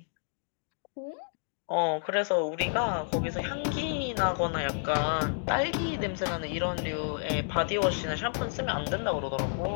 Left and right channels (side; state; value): right; silent; digital silence